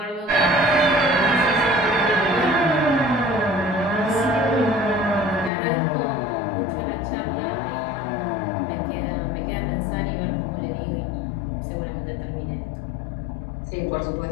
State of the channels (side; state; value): right; drops out; at 5.5 s